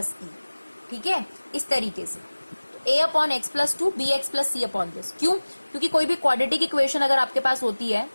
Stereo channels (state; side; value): inverted; both; correlation -1.00